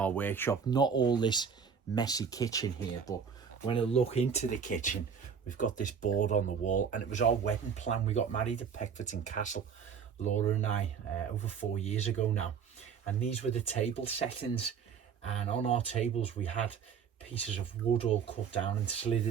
workshop, not all this messy kitchen here, but when I look into the kitchen, we've got this board on the wall, and it was our wedding plan. We got married at Peckforton Castle, Laura and I, over 4 years ago now. And these were the table settings, and on our tables we had pieces of wood all cut down and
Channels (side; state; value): left; quieter; 6.8 dB